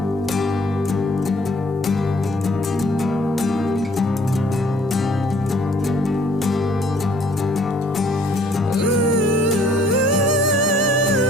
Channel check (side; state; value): both; normal; correlation 0.59